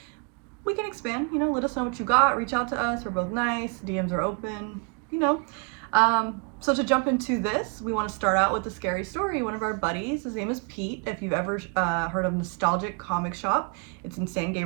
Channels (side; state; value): left; quieter; 36.2 dB